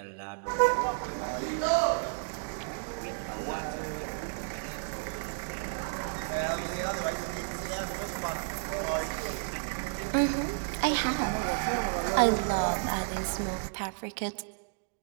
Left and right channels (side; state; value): left; silent; digital silence